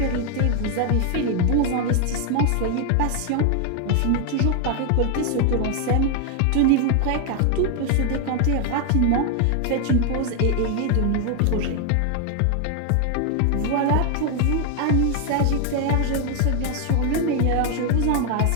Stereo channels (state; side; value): different; both; correlation 0.00